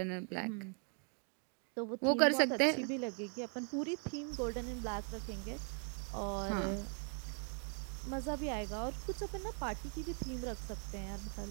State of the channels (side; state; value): left; quieter; 37.4 dB